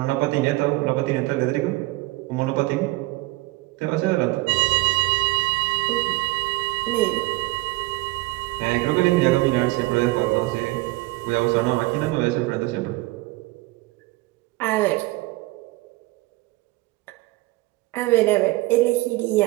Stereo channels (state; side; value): quieter; left; 20.8 dB